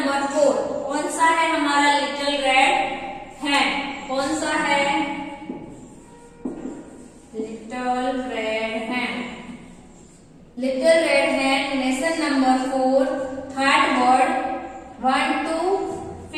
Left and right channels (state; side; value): identical; both; correlation 1.00